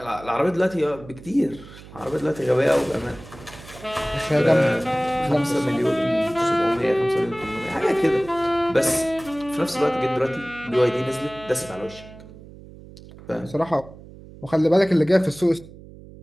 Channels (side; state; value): right; noise; hum, 18 dB below the sound